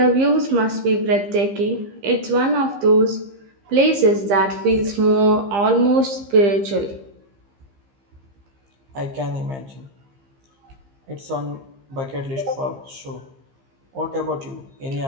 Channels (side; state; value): left; late; 15 ms